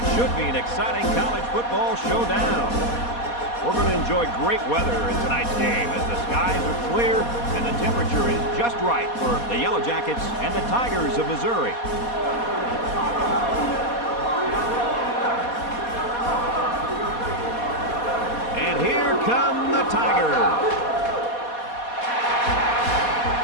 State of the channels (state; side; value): late; right; 4.2 ms